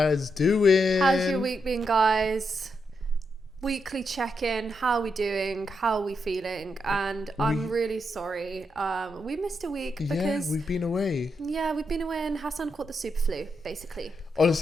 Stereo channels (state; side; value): normal; both; correlation 0.83